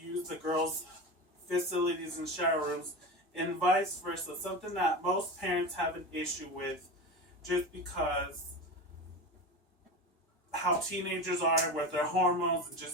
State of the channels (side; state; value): both; normal; correlation 0.25